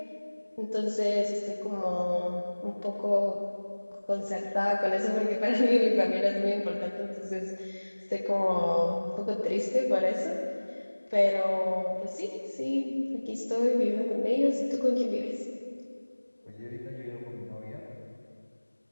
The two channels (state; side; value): inverted; both; correlation -1.00